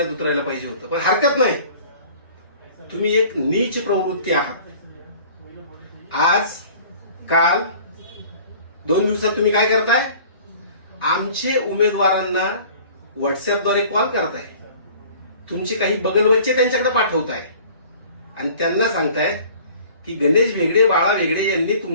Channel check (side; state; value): both; inverted; correlation -0.48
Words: उतरायला पाहिजे होतं, पण हरकत नाही, तुम्ही एक नीच प्रवृत्ती आहात। आज काल 2 दिवसात तुम्ही काय करताय, आमचे उमेदवारांना व्हॉट्सअपद्वारे कॉल करताय, तुमचे काही बगलबच्चे त्यांच्याकडे पाठवताय आणि त्यांना सांगताय की गणेश वेगळे, बाळा वेगळे यांनी